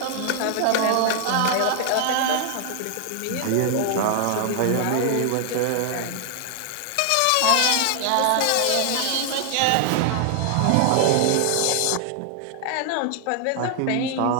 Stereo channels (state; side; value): different; both; correlation 0.00